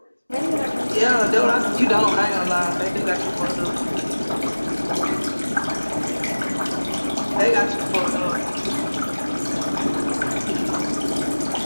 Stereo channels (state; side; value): inverted; both; correlation -1.00